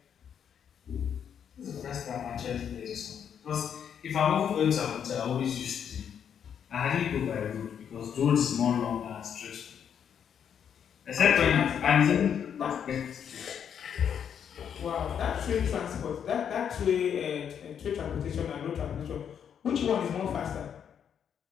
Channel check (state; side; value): quieter; right; 8.2 dB